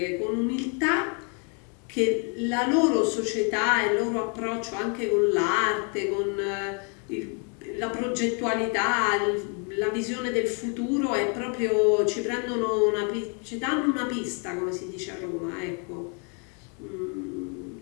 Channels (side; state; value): right; quieter; 38.1 dB